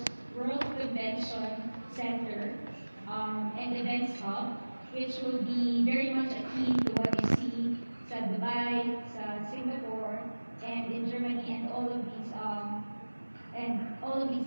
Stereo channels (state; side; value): inverted; both; correlation -1.00